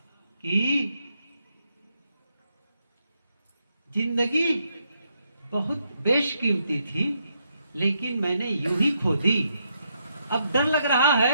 कि जिंदगी बहुत बेशकीमती थी, लेकिन मैंने यूं ही खो दी। अब डर लग रहा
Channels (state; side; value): inverted; both; correlation -0.78